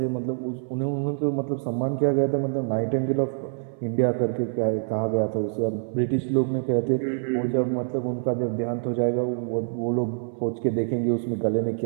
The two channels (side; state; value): left; silent; 61 dB below the other